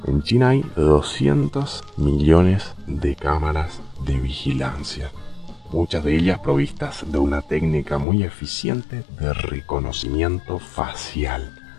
En China hay 200 millones de cámaras de vigilancia, muchas de ellas provistas de una técnica muy eficiente de reconocimiento facial.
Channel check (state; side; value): drops out; right; at 8.1 s